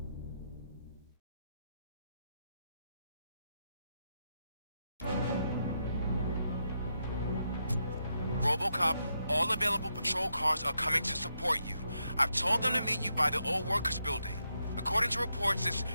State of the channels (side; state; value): both; inverted; correlation -0.82